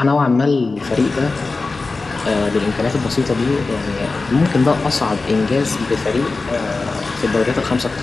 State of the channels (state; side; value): quieter; right; 3.7 dB